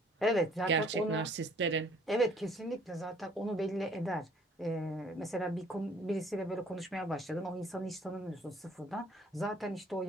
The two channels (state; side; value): normal; both; correlation 0.58